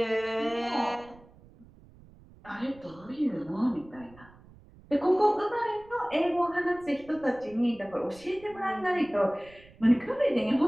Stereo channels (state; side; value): noise; right; rumble, 24 dB below the sound